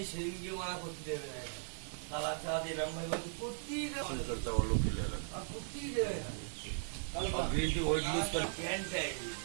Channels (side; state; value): left; silent; 52 dB below the other